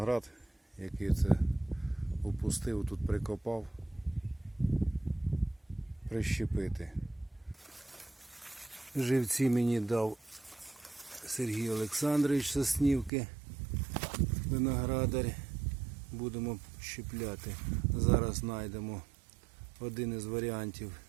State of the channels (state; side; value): drops out; left; at 13.1 s